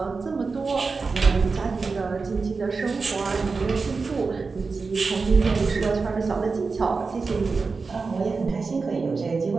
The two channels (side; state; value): left; quieter; 4.4 dB